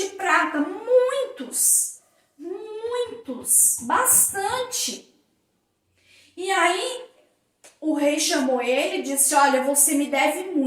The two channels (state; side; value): identical; both; correlation 1.00